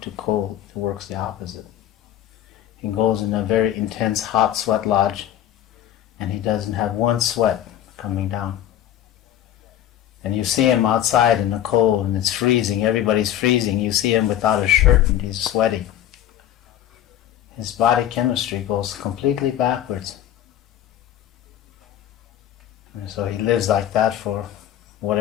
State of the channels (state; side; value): quieter; right; 11.6 dB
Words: to cold. It works the opposite. He goes in a very intense hot sweat lodge and he doesn't have one sweat coming down. And you see him outside in the cold and it's freezing, everybody's freezing. You see him without a shirt and he's sweaty. His body chemistry goes completely backwards. And so he lives like that for